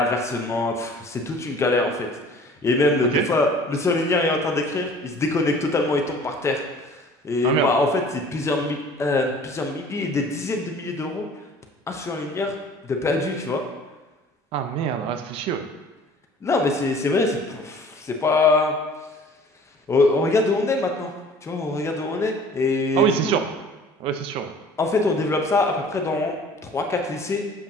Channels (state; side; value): normal; both; correlation 0.49